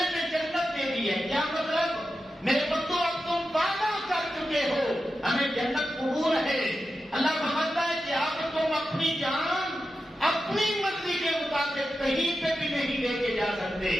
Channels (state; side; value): normal; both; correlation 0.91